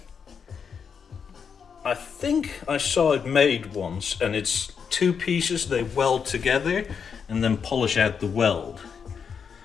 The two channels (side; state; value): right; quieter; 6.6 dB